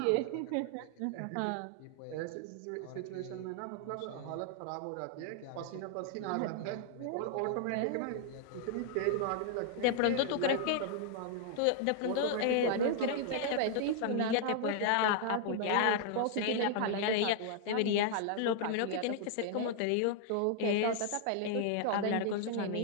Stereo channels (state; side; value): different; both; correlation 0.00